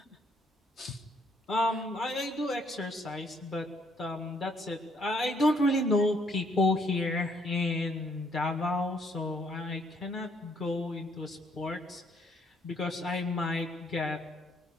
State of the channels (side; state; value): both; normal; correlation 0.68